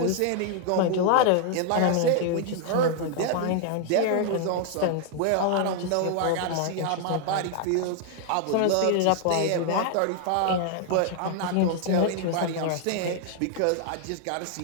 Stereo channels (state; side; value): different; both; correlation 0.00